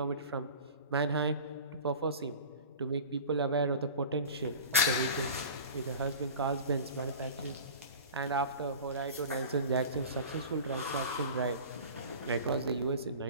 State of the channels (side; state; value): both; inverted; correlation -0.37